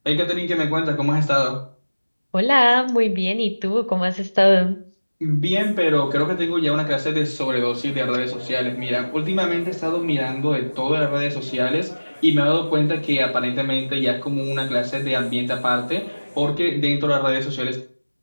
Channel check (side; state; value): both; inverted; correlation -1.00